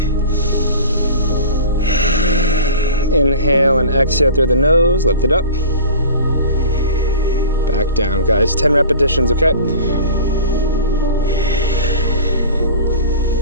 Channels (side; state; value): both; inverted; correlation -0.37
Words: Inhale and exhale through the nose. Lift it up. Back down, guys. 10 repetitions, okay?